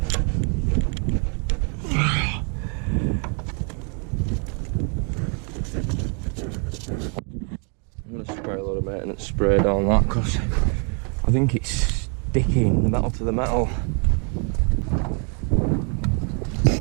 Spray a lot of maintenance spray down that because I think it's sticking the metal to the metal.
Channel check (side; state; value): left; quieter; 39.2 dB